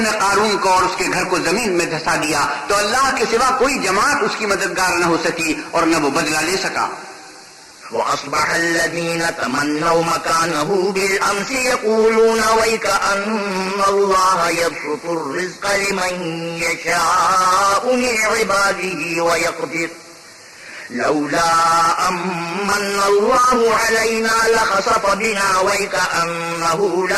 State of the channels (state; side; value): identical; both; correlation 1.00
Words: نے قارون کو اور اس کے گھر کو زمین میں دھسا دیا تو اللہ کے سوا کوئی جماعت اس کی مددگار نہ ہو سکی اور نہ وہ بدلہ لے سکا. وأصبح الذين تمنوا مكانه بالأمس يقولون ويك أن الله يبسط الرزق لمن يشاء من عباده ويقدر لولا أمن الله علينا لخسف بنا ويك أنه